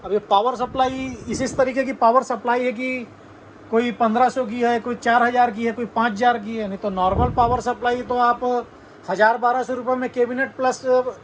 अब ये पावर सप्लाई इस तरीके की पावर सप्लाई है कि कोई 1500 की है, कोई 4000 की है, कोई 5000 की है। नहीं तो नॉर्मल पावर सप्लाई तो आप 1000-1200 रुपये में कैबिनेट प्लस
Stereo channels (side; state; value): both; identical; correlation 1.00